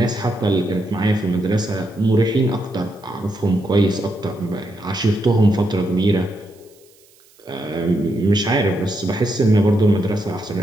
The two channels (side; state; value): right; noise; hiss, 30 dB below the sound